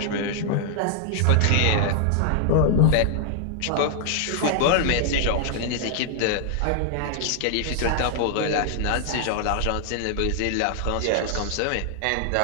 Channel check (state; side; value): different; both; correlation 0.00